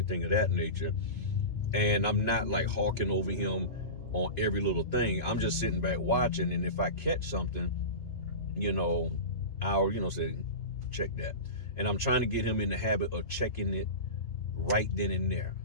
of that nature. And I'm not like hawking over him on every little thing. I'm just sitting back watching, and if I catch something, I'll say check that. And I'm trying to get him in the habit of checking it right then and there,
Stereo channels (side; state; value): right; late; 2.5 ms